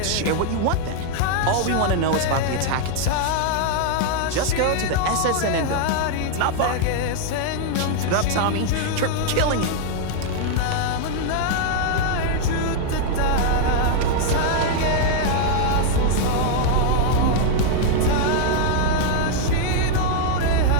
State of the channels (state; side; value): different; both; correlation 0.00